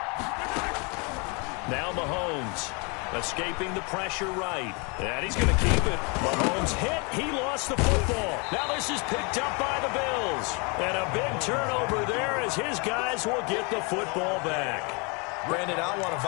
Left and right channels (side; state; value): right; quieter; 31.9 dB